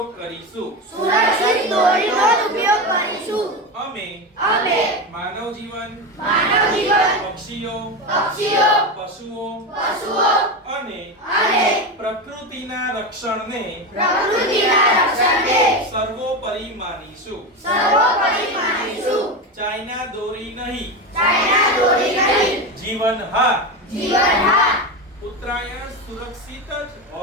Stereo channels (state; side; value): normal; both; correlation 0.18